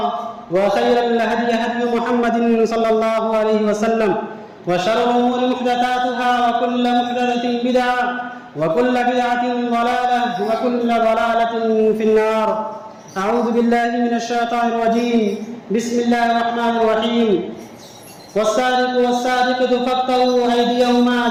وخير الهدي هدي محمد صلى الله عليه وسلم، وشر الأمور محدثاتها، وكل محدثة بدعة، وكل بدعة ضلالة، وكل ضلالة في النار. أعوذ بالله من الشيطان الرجيم. بسم الله الرحمن الرحيم. والسارق والسارقة فاقطعوا أيديهما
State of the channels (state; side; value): identical; both; correlation 1.00